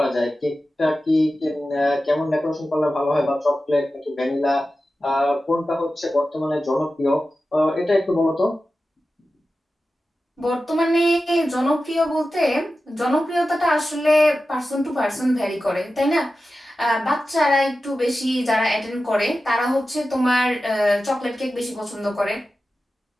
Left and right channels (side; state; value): both; normal; correlation 0.93